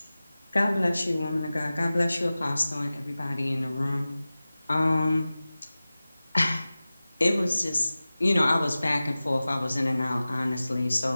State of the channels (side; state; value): both; inverted; correlation -0.97